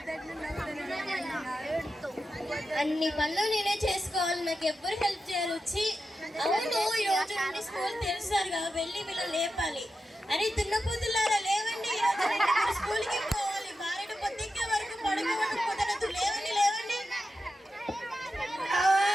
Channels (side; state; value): both; normal; correlation 0.90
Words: అన్ని పనులు నేనే చేసుకోవాలి, నాకు ఎవ్వరు హెల్ప్ చేయాలి. వచ్చి అవును, ఈ రోజు నుండి స్కూల్ తెలుసారుగా, వెళ్ళి వీళ్ళు లేపాలి. అని దున్నపోతులారా లేవండి, ఈ రోజు నుండి మీరు స్కూల్కి పోవాలి. బారెడు పొద్దుకే వరకు పడుకోవడం కుదరదు. లేవండి లేవండి.